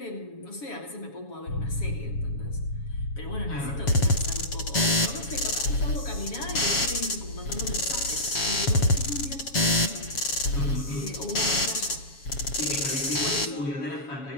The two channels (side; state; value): right; late; 7.2 ms